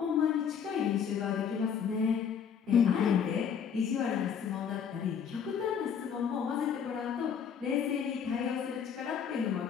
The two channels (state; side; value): quieter; right; 7.4 dB